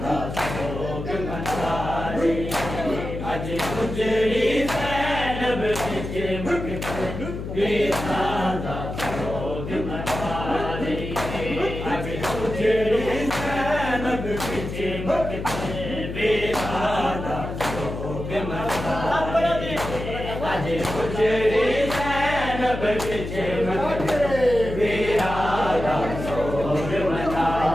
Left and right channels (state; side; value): noise; left; hum, 7 dB below the sound